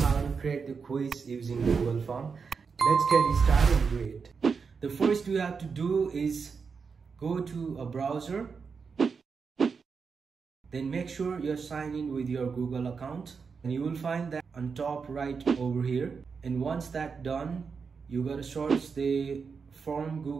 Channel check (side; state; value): left; quieter; 5.5 dB